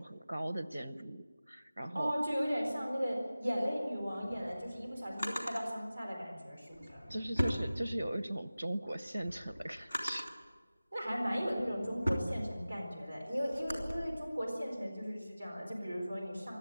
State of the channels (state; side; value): inverted; both; correlation -0.97